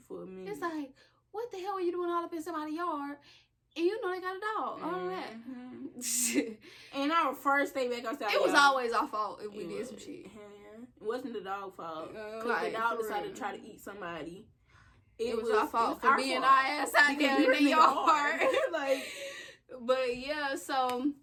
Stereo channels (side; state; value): both; identical; correlation 1.00